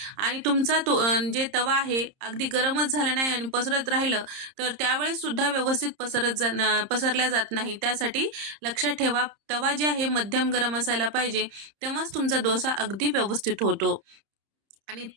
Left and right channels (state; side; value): late; left; 30 ms